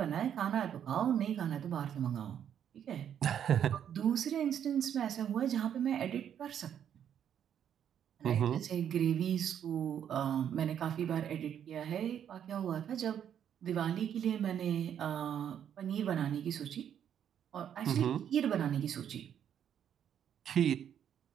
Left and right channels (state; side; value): quieter; left; 9.2 dB